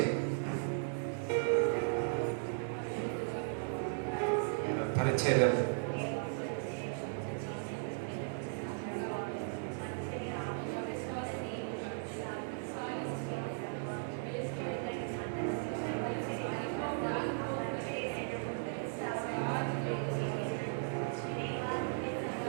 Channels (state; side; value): silent; left; digital silence